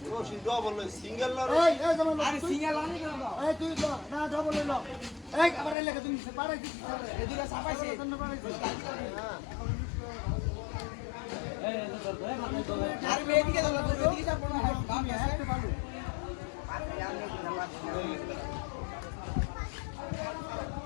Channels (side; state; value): right; drops out; at 5.8 s